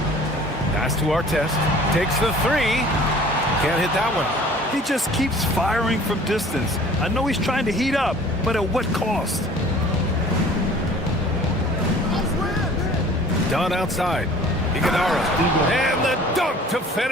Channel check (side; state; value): both; normal; correlation 0.49